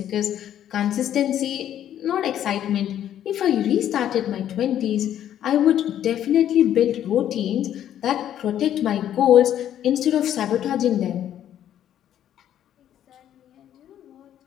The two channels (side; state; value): right; quieter; 10.8 dB